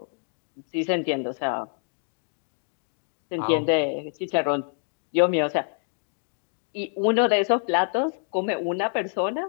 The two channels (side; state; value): right; silent; digital silence